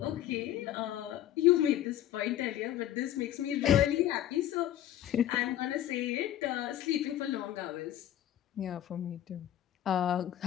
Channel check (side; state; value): right; quieter; 12.1 dB